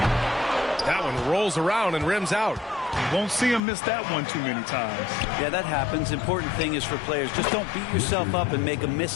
That one rolls around and rims out. You won't see him miss that one too many times. Yeah, that happens. Important thing is for players, just don't beat yourself up and make a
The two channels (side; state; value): right; drops out; at 3.6 s